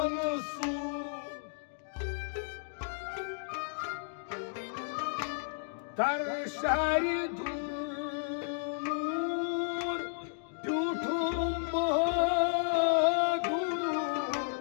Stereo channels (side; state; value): right; silent; digital silence